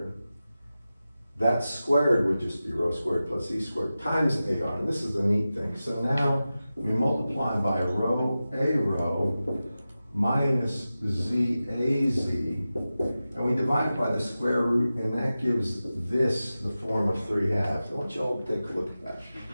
that squared would just be rho squared plus Z squared times AR. And this is the neat thing. So now we multiply by rho A rho minus Z A Z, and we divide by the square root, and that gives this the form of 3 halves. I want you all to take a look at that.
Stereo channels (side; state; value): both; inverted; correlation -0.94